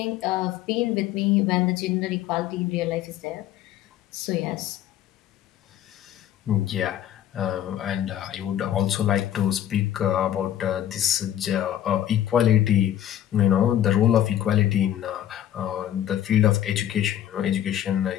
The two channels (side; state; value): right; quieter; 11.4 dB